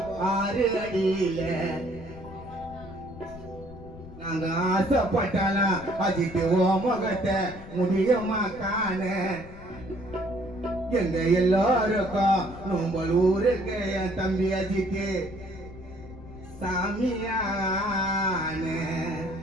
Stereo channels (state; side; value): noise; left; rumble, 16 dB below the sound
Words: 6 அடியில நாங்க ஆசைப்பட்டாலாம் அஜித்து ஓ முகத்தை முடியுமா காண எங்க எல்லாருக்கும் நோம்பல் ஊருக்கு என் தம்பி அஜித்து சாமியான